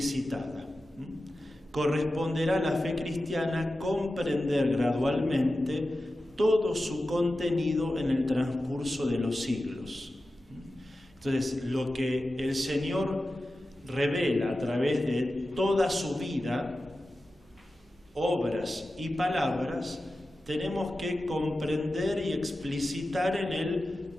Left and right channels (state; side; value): normal; both; correlation 0.93